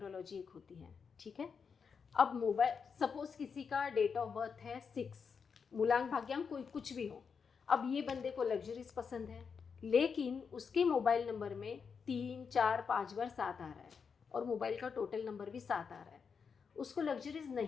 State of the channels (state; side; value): quieter; right; 6.0 dB